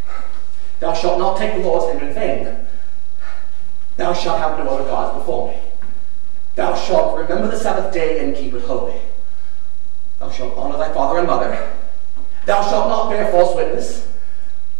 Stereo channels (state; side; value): quieter; left; 34.3 dB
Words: Thou shalt not take the Lord's name in vain. Thou shalt have no other gods before me. Thou shalt remember the Sabbath day and keep it holy. Thou shalt honor thy father and mother. Thou shalt not bear false witness.